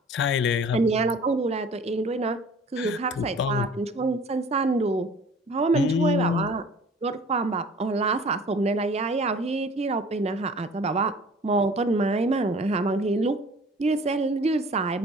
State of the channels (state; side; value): normal; both; correlation 0.48